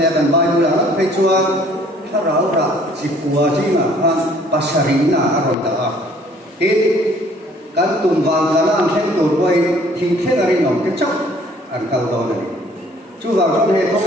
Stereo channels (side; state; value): both; normal; correlation 0.57